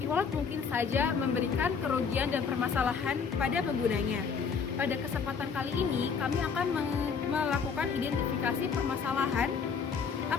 mungkin saja memberikan kerugian dan permasalahan pada penggunanya. Pada kesempatan kali ini, kami akan melakukan identifikasi permasalahan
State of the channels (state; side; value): quieter; right; 5.9 dB